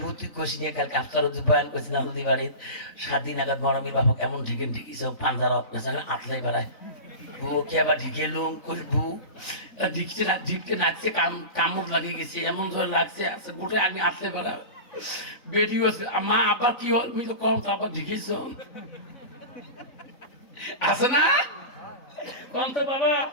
ভূত কষি নিয়ে কালকে আফতার বয়ান করছিলাম নদী বাড়ির 7 দিন আগে গরমের বাবা কেমন ঢিকে ঢিকিস পাঞ্জার আতলাই বেড়ায় বউকে আবার ঢিকে লুম করবু ঢিকতে ঢিকতে নাচছে কামড় লাগিয়ে গেছে এমন ধরে লাগছে আছে গোটে আগে আতলে বেড়া বেটি আছে মা আবার কি হল আমি তো কম তো আবার ঢিকিস আছে না কম তো বাবা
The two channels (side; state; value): right; late; 3.9 ms